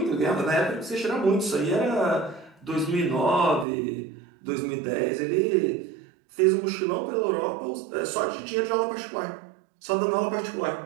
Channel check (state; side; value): drops out; left; at 3.7 s